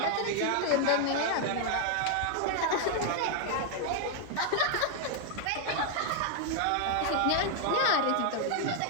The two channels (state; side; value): different; both; correlation 0.00